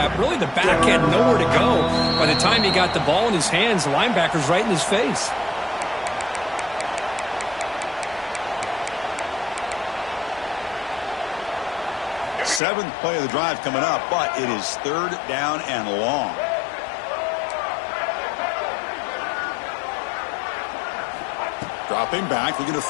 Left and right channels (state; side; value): drops out; right; at 12.6 s